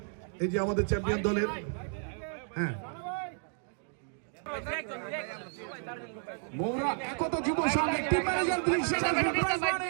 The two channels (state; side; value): silent; left; 56 dB below the other